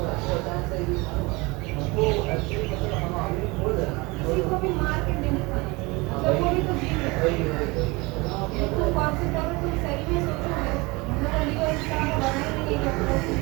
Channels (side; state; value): left; quieter; 24.7 dB